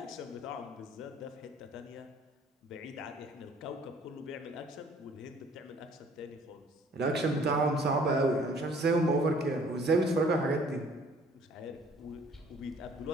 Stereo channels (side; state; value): both; normal; correlation 0.56